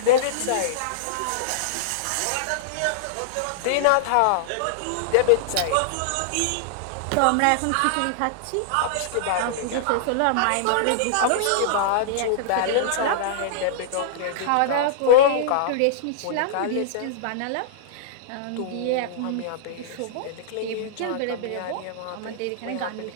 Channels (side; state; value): both; different; correlation -0.02